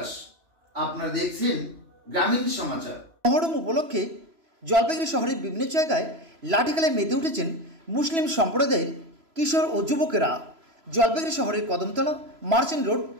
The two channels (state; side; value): late; left; 3.0 ms